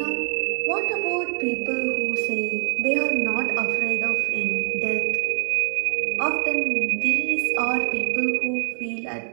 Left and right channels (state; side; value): silent; left; digital silence